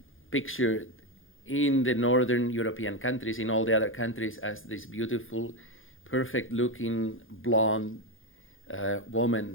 pictured in the northern European countries, in all the other countries, as this beautiful, perfect-looking, blonde woman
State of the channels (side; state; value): right; late; 0.58 ms